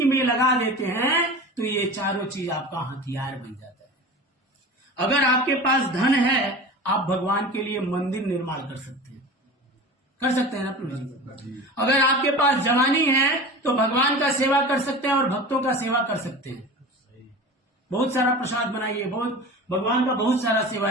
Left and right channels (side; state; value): both; normal; correlation 0.34